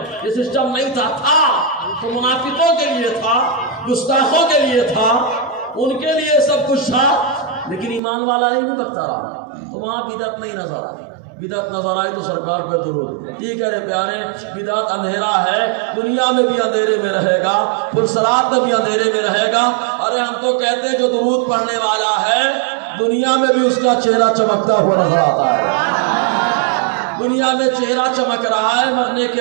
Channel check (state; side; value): drops out; left; at 8.0 s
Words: یہ سسٹم نہیں تھا تو منافقوں کے لیے تھا، گستاخوں کے لیے تھا، ان کے لیے سب کچھ تھا. لیکن ایمان والا نہیں بھٹکتا رہا تو وہاں بدعت نہیں نظر آئی. بدعت نظر آئی تو سرکار پہ درود. ٹھیک ہے پیارے، بدعت اندھیرا ہے، دنیا میں بھی اندھیرے میں رہے گا، پرسرات میں بھی اندھیرے میں رہے گا. ارے ہم تو کہتے ہیں جو درود پڑھنے والا ہے دنیا میں بھی اس کا چہرہ چمکتا ہوا نظر آتا ہے. دنیا میں چہرہ چمک رہا ہے، مرنے کے